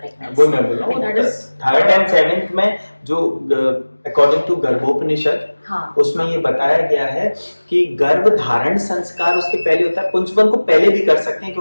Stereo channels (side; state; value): both; inverted; correlation -1.00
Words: वो मैं बोल रहा हूँ 3rd and 7th में जो according to गर्भोपनिषद, हाँ, उसमें ये बताया गया है कि गर्भ धारण संस्कार उसके पहले होता है। पुंसवन को पहले भी कर सकते हैं